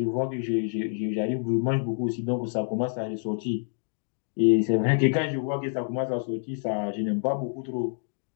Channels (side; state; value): right; silent; digital silence